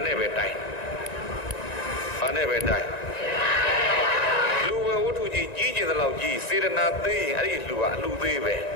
နဲ့ပဲတိုင်ဘာနဲ့ပဲတိုင်လူဝဲဝတ္ထုကြီးကြီးကျင်တဲ့လောက်ကြီးစေတနာသေးရင်အဲ့ဒီလူကအလူသေးပဲ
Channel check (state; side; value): late; right; 1.9 ms